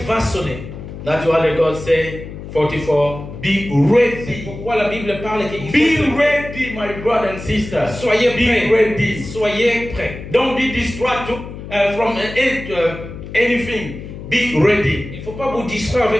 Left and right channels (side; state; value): left; noise; hum, 11 dB below the sound